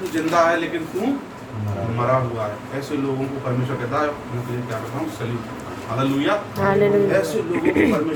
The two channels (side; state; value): both; identical; correlation 1.00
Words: जिंदा है लेकिन तू मरा हुआ है। ऐसे लोगों को परमेश्वर कहता है, मैं तुझे क्या करता हूँ, सलीम। हालेलुया। ऐसे लोगों को